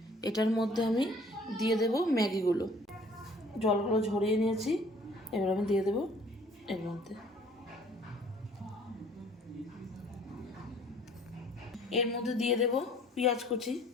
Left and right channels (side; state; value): both; normal; correlation 0.55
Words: এটার মধ্যে আমি দিয়ে দেব ম্যাগিগুলো। জলগুলো ঝরিয়ে নিয়েছি, এবার আমি দিয়ে দেব এর মধ্যে। এর মধ্যে দিয়ে দেব পেঁয়াজ কুচি